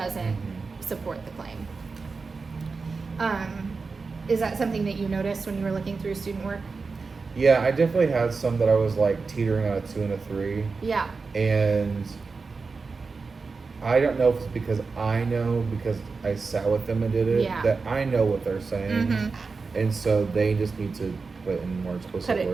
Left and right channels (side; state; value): left; quieter; 4.5 dB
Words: Mhm. support the claim. Is that something that you noticed when you were looking through student work? Yeah, I definitely had some that I was like teetering on a 2 and a 3. Yeah. And I don't know if it's because I sat with them and did it, Yeah. that I know what they're saying. Mhm. And so they just need to put in more explicit